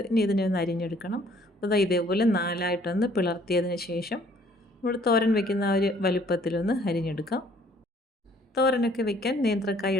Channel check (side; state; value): both; normal; correlation 0.60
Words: ഇനി ഇതിനെ ഒന്ന് അരിഞ്ഞെടുക്കണം. അപ്പോൾ ഇതേപോലെ 4ആയിട്ടൊന്ന് പിളർത്തിയതിന് ശേഷം നമ്മൾ തോരൻ വെക്കുന്ന ആ ഒരു വലുപ്പത്തിലൊന്ന് അരിഞ്ഞെടുക്കാം. തോരനൊക്കെ വെക്കാൻ നേന്ത്രക്കായ